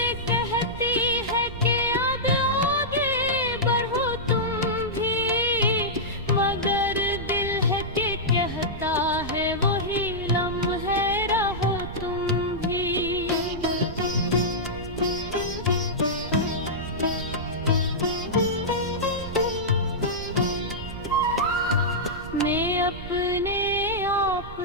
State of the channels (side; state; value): right; noise; rumble, 11 dB below the sound